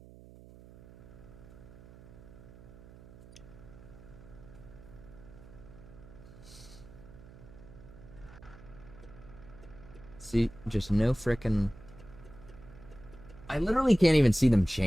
See, just no frickin'... I literally can't even see them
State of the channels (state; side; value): noise; right; hum, 19 dB below the sound